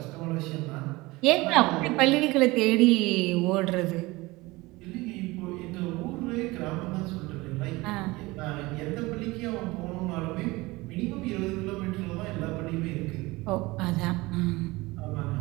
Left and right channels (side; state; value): left; quieter; 21.6 dB